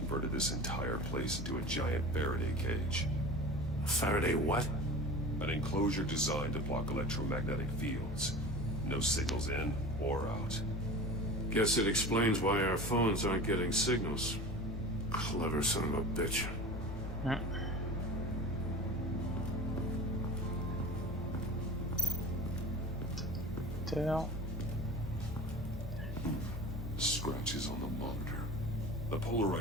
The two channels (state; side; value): normal; both; correlation 0.35